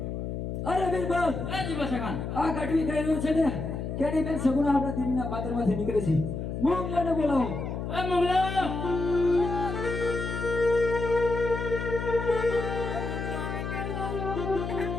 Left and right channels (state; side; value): noise; left; hum, 4 dB below the sound